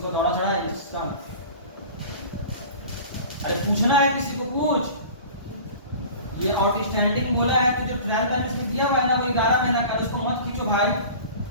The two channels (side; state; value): both; inverted; correlation -0.40